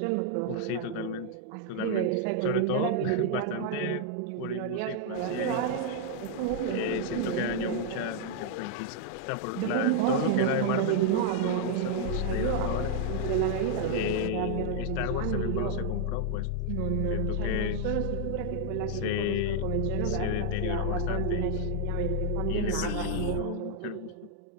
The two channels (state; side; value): different; both; correlation -0.01